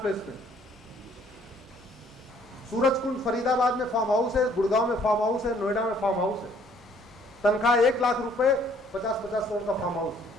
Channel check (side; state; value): both; normal; correlation 0.61